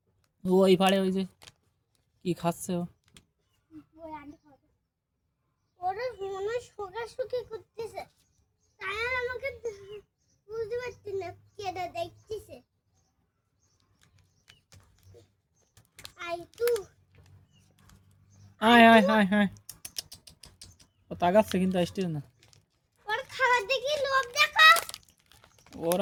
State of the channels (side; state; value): both; identical; correlation 1.00